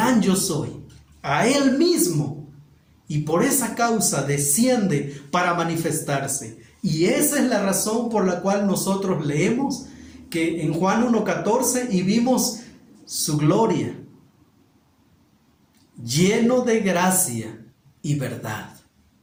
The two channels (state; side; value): identical; both; correlation 1.00